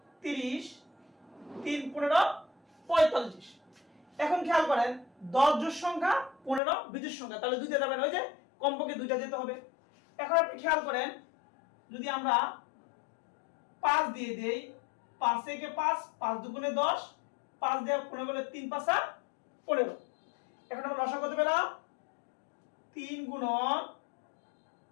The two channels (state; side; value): drops out; right; at 6.6 s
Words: 30, 3 15 45। এখন খেয়াল করেন 10 জোড় সংখ্যা, 15 বিজোড় সংখ্যা, তাহলে 2 দিয়ে যাবেন, ওই যে কমপক্ষে 2টা যেতে হবে। এখন আপনি খেয়াল করেন, যদি আমরা 5 দিয়ে দেই, 5 থেকে 5, 5 দুগুণে 10, 5 দিয়ে 15 করলে 3 5 15। এখন আমরা লসাগু কত পেলাম? 3 গুণন